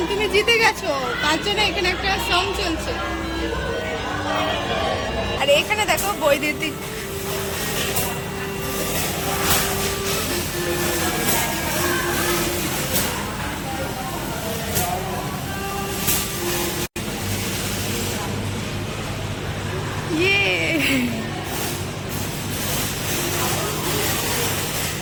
তুমি জিতে গেছো, তার জন্য এখানে একটা সং চলছে। আর এখানে দেখো বৈদ্যুতিক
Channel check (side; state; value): both; identical; correlation 1.00